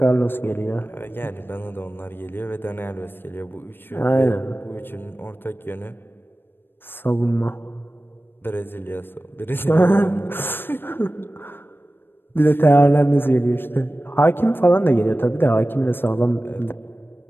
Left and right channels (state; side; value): late; right; 0.10 ms